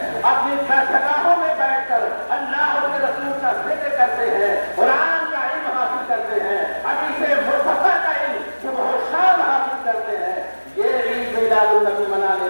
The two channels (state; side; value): inverted; both; correlation -1.00